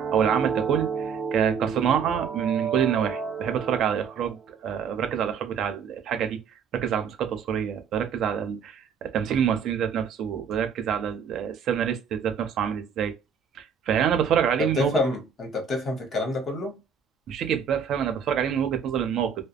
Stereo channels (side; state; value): left; quieter; 6.6 dB